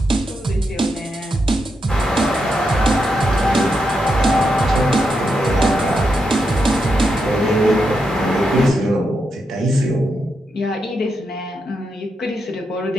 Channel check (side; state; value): both; normal; correlation 0.84